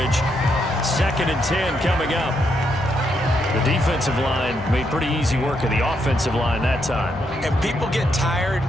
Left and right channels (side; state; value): both; normal; correlation 0.78